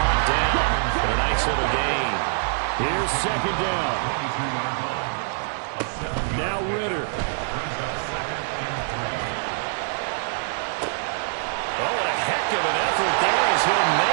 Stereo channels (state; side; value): silent; left; digital silence